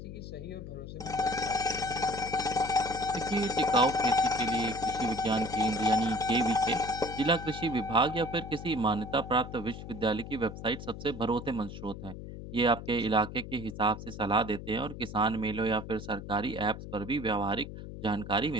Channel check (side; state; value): left; noise; hum, 11 dB below the sound